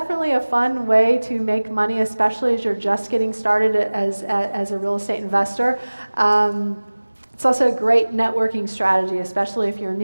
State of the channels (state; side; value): inverted; both; correlation -1.00